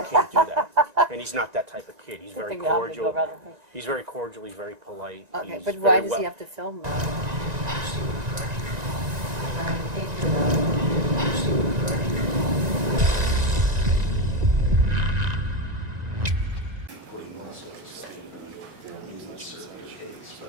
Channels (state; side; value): late; left; 1.9 ms